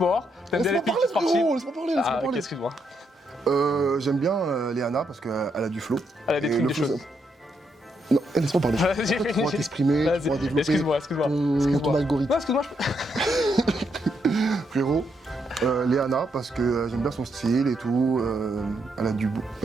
T'aimes bien les laisse-moi filles parler, sportives. frérot, laisse-moi parler, laisse-moi Ah, ok, parler. excuse-moi. J'aime bien Léana parce qu'elle a du flow. Elle a des Et trucs, le des flow, choses. ça- Non, laisse-moi parler. Vas-y, Tu pourras finis. t'exprimer, tu Vas-y. pourras développer Excuse-moi. ton algorithme. Non, excuse-moi, Frérot, Léana parce que j'aime bien son style et tout. Elle a du beau.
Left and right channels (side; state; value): both; normal; correlation 0.78